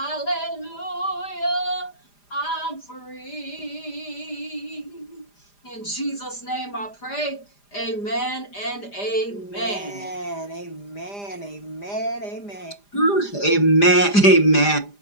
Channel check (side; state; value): right; late; 4.9 ms